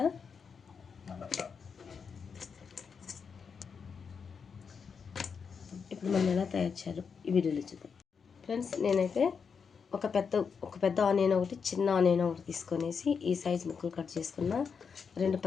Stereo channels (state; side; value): quieter; right; 6.1 dB